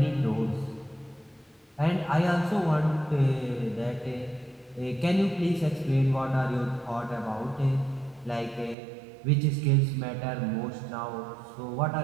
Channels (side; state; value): left; drops out; at 8.8 s